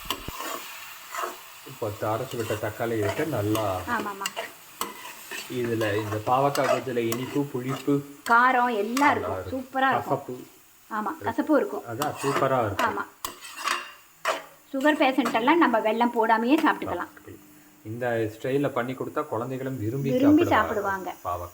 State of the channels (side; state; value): both; identical; correlation 1.00